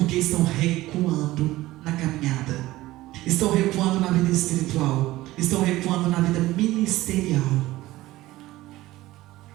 estão recuando na caminhada, estão recuando na vida espiritual, estão recuando na vida ministerial.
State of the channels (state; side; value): quieter; left; 17.2 dB